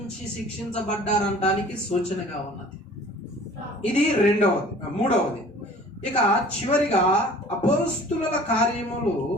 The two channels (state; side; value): normal; both; correlation 0.48